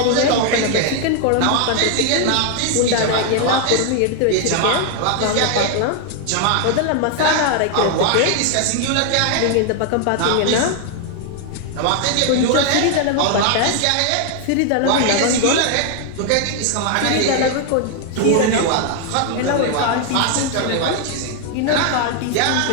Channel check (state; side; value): different; both; correlation 0.00